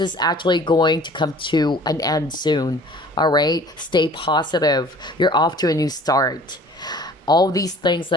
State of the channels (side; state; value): both; normal; correlation 0.49